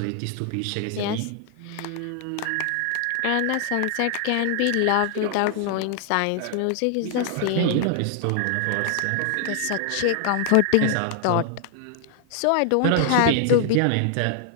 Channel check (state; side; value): different; both; correlation 0.00